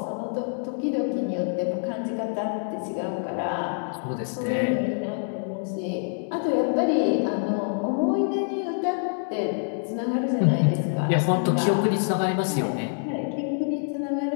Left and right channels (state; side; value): silent; right; 61 dB below the other